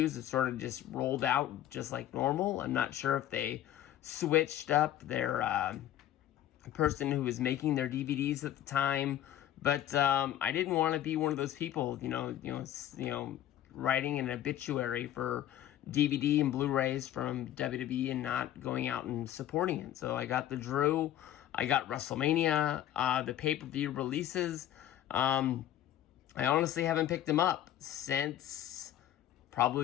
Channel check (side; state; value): right; quieter; 12.2 dB